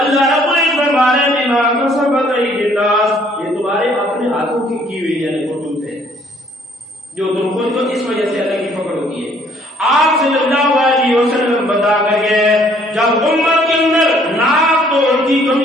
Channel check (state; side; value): normal; both; correlation 0.62